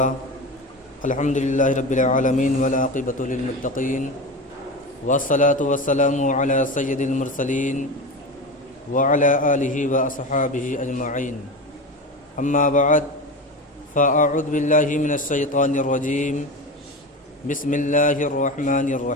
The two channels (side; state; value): both; normal; correlation 0.25